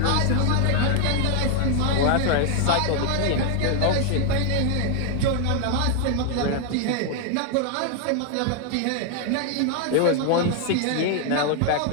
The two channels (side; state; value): both; different; correlation 0.00